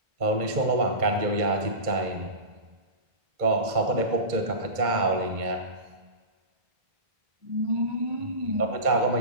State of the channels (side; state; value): left; late; 2.2 ms